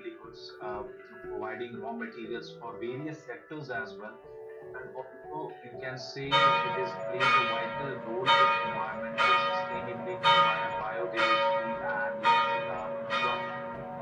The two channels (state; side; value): identical; both; correlation 1.00